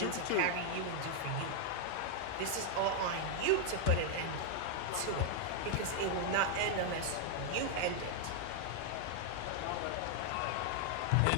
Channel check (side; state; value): both; different; correlation 0.00